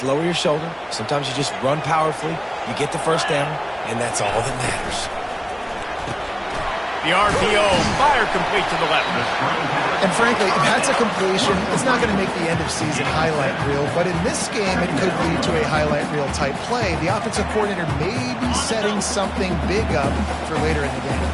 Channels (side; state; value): both; identical; correlation 1.00